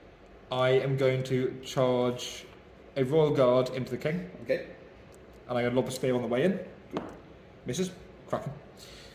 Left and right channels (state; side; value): identical; both; correlation 1.00